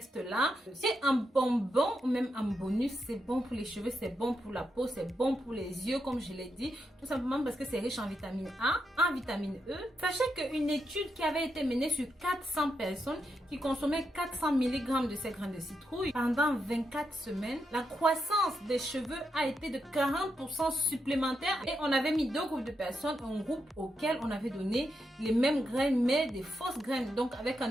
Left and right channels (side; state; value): both; normal; correlation 0.83